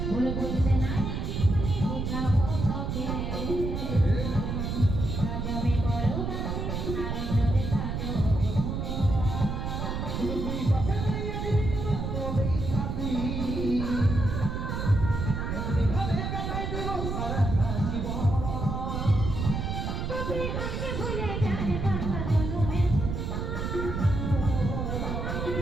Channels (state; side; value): noise; right; rumble, 2 dB below the sound